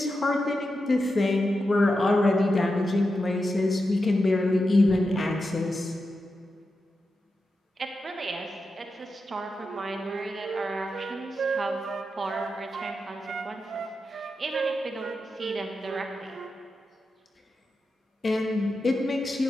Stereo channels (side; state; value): both; normal; correlation 0.89